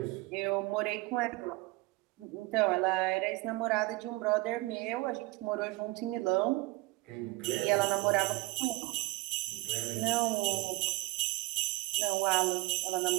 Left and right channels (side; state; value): left; quieter; 22.1 dB